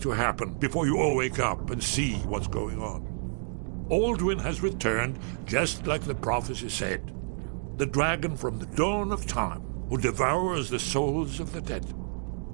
happen before you all wake up and see what's going on? Aldwin has returned just like the prophecy said. The dragon from the dawn of time who devours the souls of the dead.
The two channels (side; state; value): left; silent; 58 dB below the other